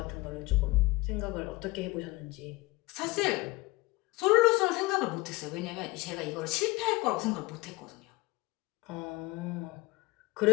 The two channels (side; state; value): right; quieter; 22.1 dB